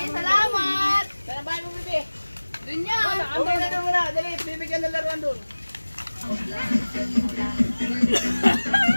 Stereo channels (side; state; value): both; inverted; correlation -1.00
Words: salamat. Sana bahay mo, bibi. Dun yan. Uwi na doon muna. Dali, bibigyan ng laruan doon.